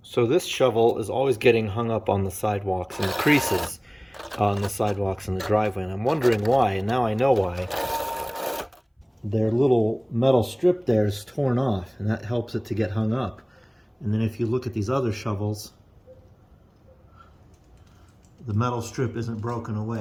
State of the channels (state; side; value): identical; both; correlation 1.00